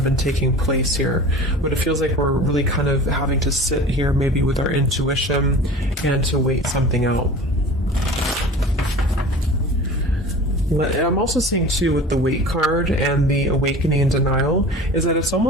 been taking place here. But it feels like we're really kind of having to sit here maybe with our intuition and to wait something out. I'm also seeing too with the weight card and the awakening and denial is that it's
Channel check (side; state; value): both; normal; correlation 0.38